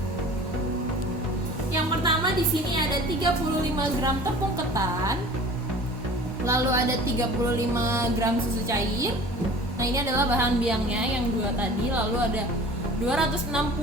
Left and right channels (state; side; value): normal; both; correlation 0.44